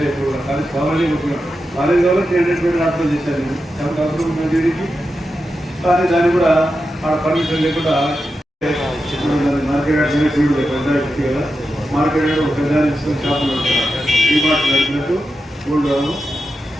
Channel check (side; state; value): both; normal; correlation 0.89